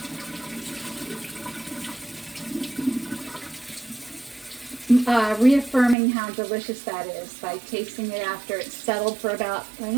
Reaffirming how delicious that is by tasting it after it's settled for about,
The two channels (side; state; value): left; drops out; at 6.0 s